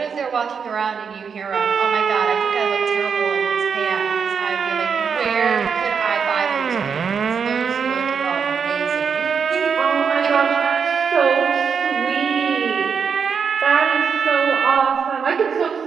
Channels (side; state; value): left; quieter; 6.3 dB